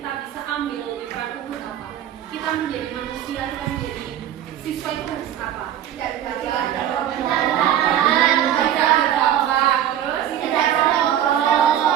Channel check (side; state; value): left; quieter; 10.9 dB